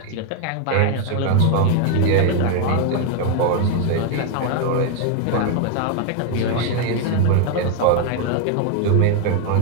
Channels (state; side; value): different; both; correlation 0.01